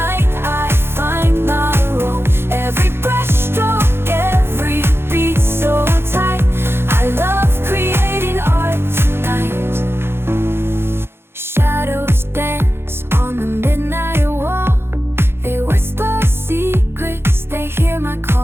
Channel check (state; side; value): late; left; 0.11 ms